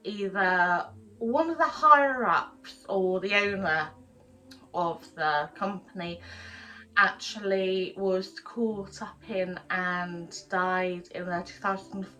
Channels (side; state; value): both; identical; correlation 1.00